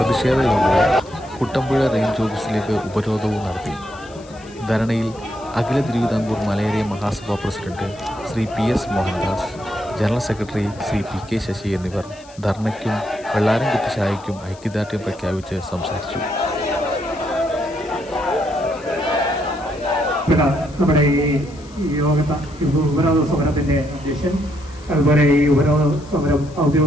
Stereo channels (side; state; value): left; noise; hiss, 24 dB below the sound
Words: യോഗവും കുട്ടമ്പുഴ റേഞ്ച് ഓഫീസിലേക്ക് ഉപരോധവും നടത്തി. ധരണയിൽ Akhila Thiruvithamkoor Malayaraya Mahasabha president Shri PS Mohandas, general secretary Shri PK Sasi എന്നിവർ ധർണയ്ക്കും വെള്ളാരംകുത്ത് ശാഖയ്ക്കും ഐക്യദാർഢ്യം പ്രഖ്യാപിച്ച് സംസാരിച്ചു. നമ്മുടെ ഈ ഉപരോധ സമരത്തിന്റെ അധ്യക്ഷൻ, അതുപോലെ ഈ ഉപരോധ സമരം